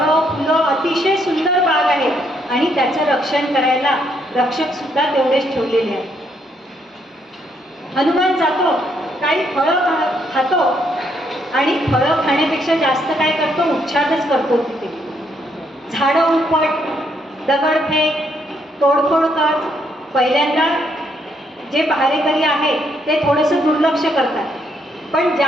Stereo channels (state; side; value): normal; both; correlation 0.73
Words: फुलं अतिशय सुंदर बाग आहे आणि त्याचं रक्षण करायला रक्षक सुद्धा तेवढेच ठेवलेले आहेत. हनुमान जातो, काही फळं खातो आणि फळं खाण्यापेक्षा जास्त काय करतो, उच्छादच करतो. तिथे झाडं उपट, दगडफेक, तोडफोड कर. पहिल्यांदा जे पहारेकरी आहे ते थोडंसं दुर्लक्ष करतात, पण